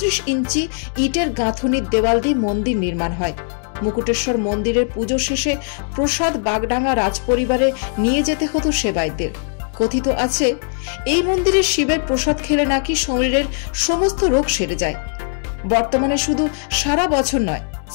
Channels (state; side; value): silent; right; 57 dB below the other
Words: ইঞ্চি ইটের গাঁথুনির দেওয়াল দিয়ে মন্দির নির্মাণ হয়। মুকুটেশ্বর মন্দিরের পুজো শেষে প্রসাদ বাগডাঙ্গা রাজপরিবারে নিয়ে যেতে হতো সেবায়তদের। কথিত আছে এই মন্দিরের শিবের প্রসাদ খেলে নাকি শরীরের সমস্ত রোগ সেরে যায়। বর্তমানে শুধু সারা বছর নয়,